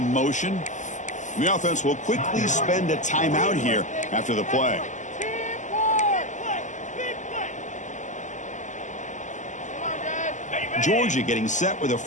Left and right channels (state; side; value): late; right; 0.35 ms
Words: motion. The offense will quickly spend a timeout here after the play. Georgia getting set with a